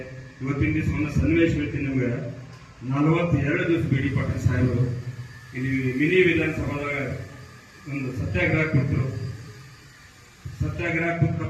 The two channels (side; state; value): both; identical; correlation 1.00